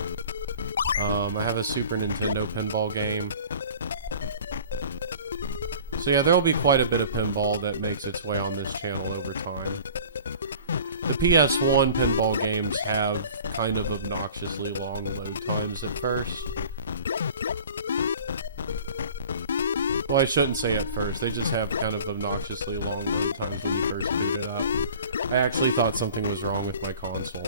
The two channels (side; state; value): both; inverted; correlation -0.44